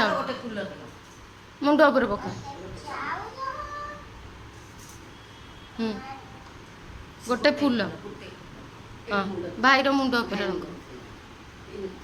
मुंड ऊपर पका गोटे फूल हाँ भाई मुंड ऊपर रंग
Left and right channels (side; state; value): both; identical; correlation 1.00